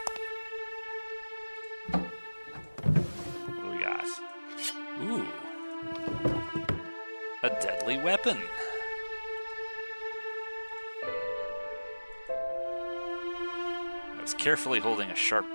What do we got? Ooh. A deadly weapon. I was carefully holding a sharp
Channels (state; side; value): inverted; both; correlation -1.00